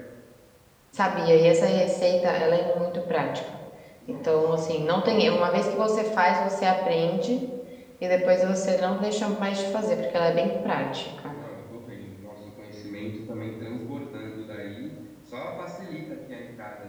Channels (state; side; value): identical; both; correlation 1.00